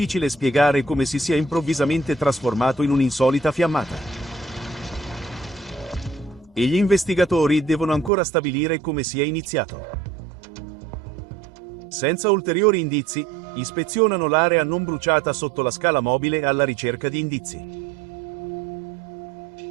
spiegare come si sia improvvisamente trasformato in un'insolita fiammata. E gli investigatori devono ancora stabilire come sia iniziato. Senza ulteriori indizi, ispezionano l'area non bruciata sotto la scala mobile alla ricerca di indizi.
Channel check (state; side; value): drops out; left; at 8.1 s